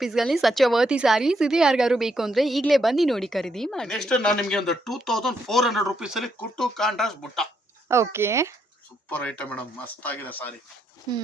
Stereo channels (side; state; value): both; normal; correlation 0.77